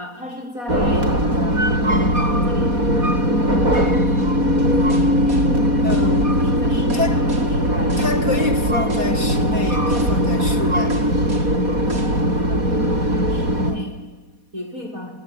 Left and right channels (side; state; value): left; late; 4.2 ms